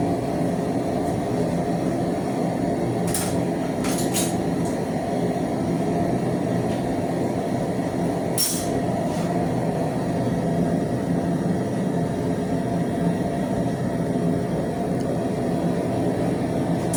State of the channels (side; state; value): both; identical; correlation 1.00